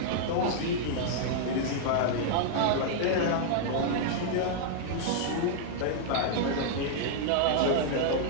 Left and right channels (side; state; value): both; different; correlation -0.01